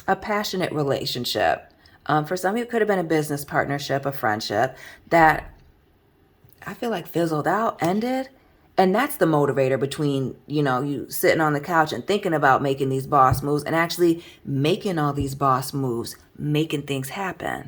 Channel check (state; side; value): identical; both; correlation 1.00